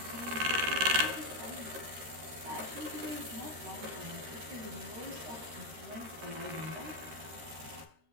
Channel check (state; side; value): late; left; 13 ms